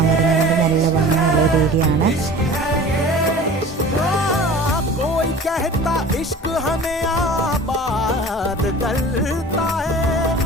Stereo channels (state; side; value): normal; both; correlation 0.41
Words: വരുന്നുണ്ട്. നല്ല ഭംഗിയുള്ള ഒരു ഏരിയ ആണ്. कहता इश्क हमें आबाद करता है,